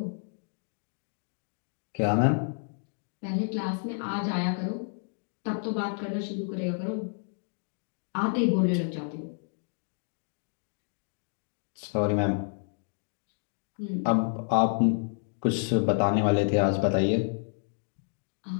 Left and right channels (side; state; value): right; silent; 58 dB below the other